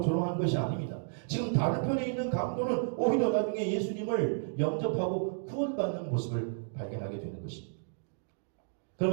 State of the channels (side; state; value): left; silent; digital silence